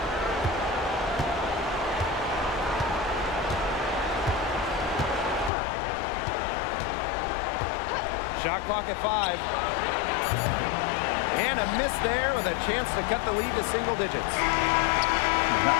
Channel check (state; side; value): drops out; right; at 5.5 s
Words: Shot clock at 5. And a miss there with a chance to cut the lead to single digits.